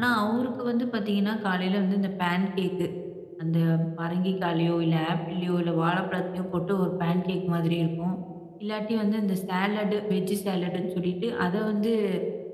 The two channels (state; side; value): identical; both; correlation 1.00